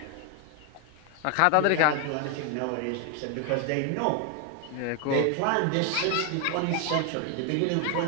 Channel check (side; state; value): both; different; correlation 0.01